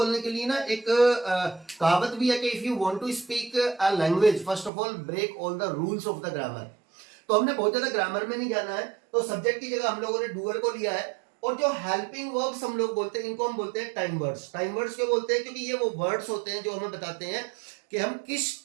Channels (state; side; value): drops out; left; at 4.7 s